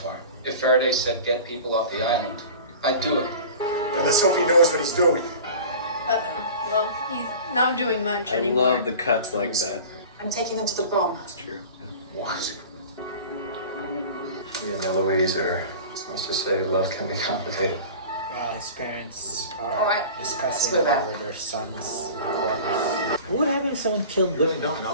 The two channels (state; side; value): inverted; both; correlation -0.38